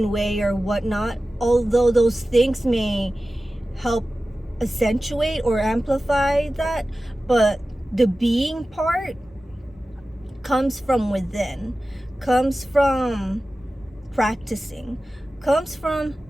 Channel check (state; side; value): normal; both; correlation 0.95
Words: way or whatnot. Although those things may help accentuate or amplify that, but the being part comes from within, comes from practicing, comes from